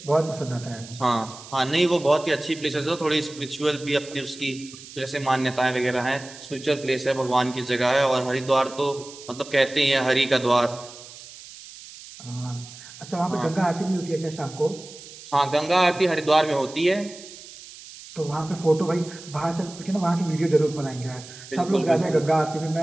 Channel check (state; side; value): noise; right; hiss, 17 dB below the sound